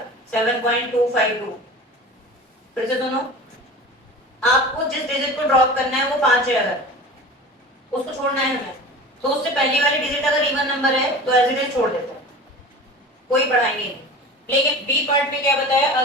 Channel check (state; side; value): normal; both; correlation 0.36